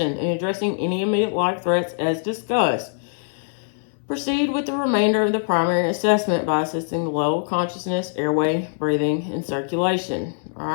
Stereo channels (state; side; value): silent; right; 64 dB below the other